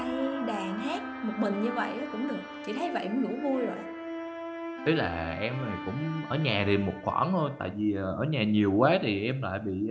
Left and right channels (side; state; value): both; identical; correlation 1.00